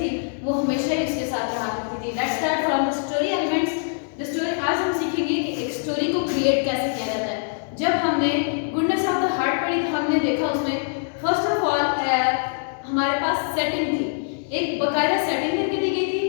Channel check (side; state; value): right; silent; digital silence